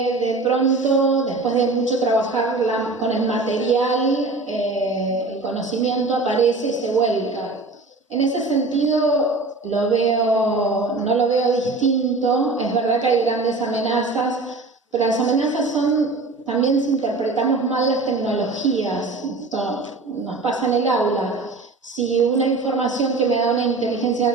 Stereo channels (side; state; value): left; quieter; 3.4 dB